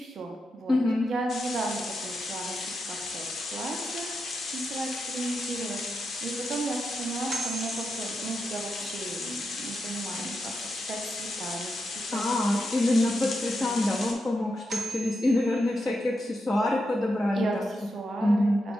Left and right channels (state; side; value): normal; both; correlation 0.86